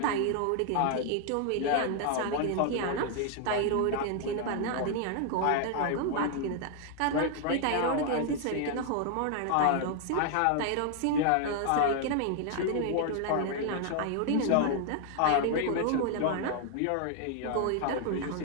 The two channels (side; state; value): both; different; correlation 0.00